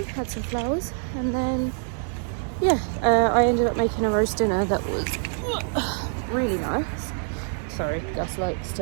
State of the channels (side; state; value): left; silent; 62 dB below the other